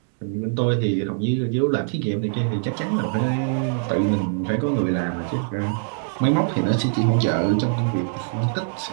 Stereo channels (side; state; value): left; silent; digital silence